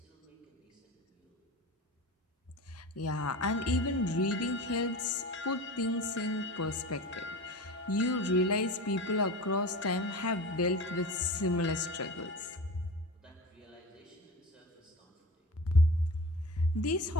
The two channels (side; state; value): both; normal; correlation 0.33